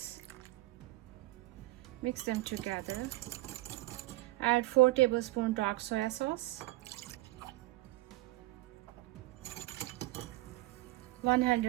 Mix them together. Add 4 tablespoons dark soy sauce,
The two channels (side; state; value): left; quieter; 18.9 dB